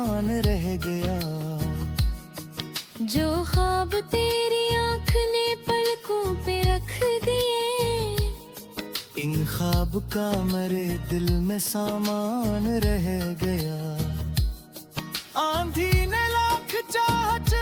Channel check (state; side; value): identical; both; correlation 1.00